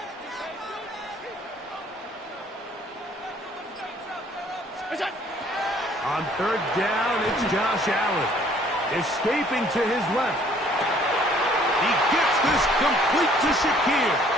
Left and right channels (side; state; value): both; normal; correlation 0.59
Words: On third down, it's Josh Allen. Escaping to his left. He gets this complete to Shakir.